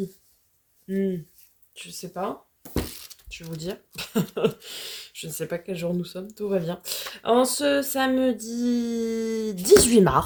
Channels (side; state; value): both; identical; correlation 1.00